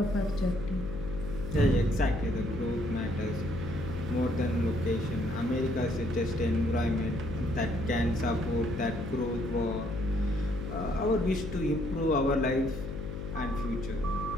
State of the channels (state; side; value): noise; left; hum, 7 dB below the sound